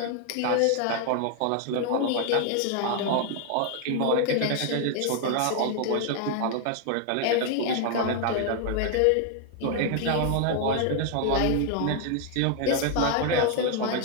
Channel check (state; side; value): different; both; correlation 0.00